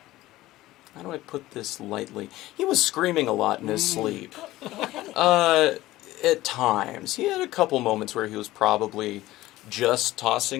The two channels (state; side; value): quieter; right; 16.8 dB